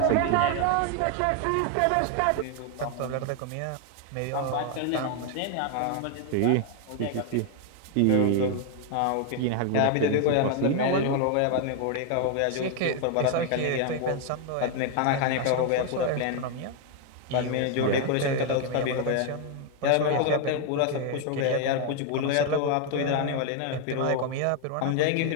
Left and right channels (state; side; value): different; both; correlation 0.00